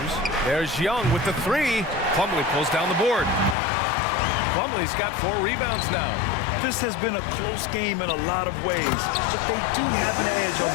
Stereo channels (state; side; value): drops out; right; at 3.6 s